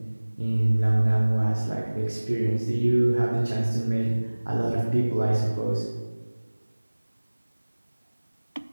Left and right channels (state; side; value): inverted; both; correlation -1.00